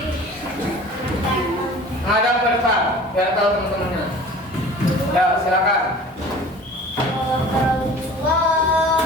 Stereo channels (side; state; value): both; normal; correlation 0.43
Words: Ngadap ke depan biar tahu teman-temannya. Ya, silakan. Allahu